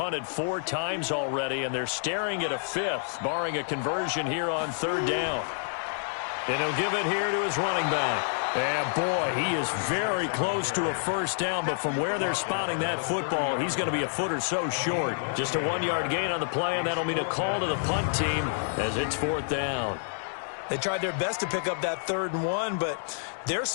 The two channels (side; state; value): right; silent; digital silence